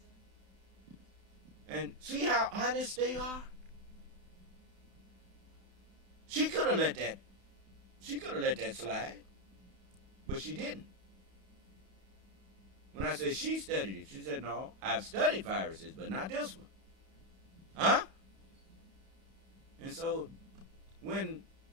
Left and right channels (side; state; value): left; late; 31 ms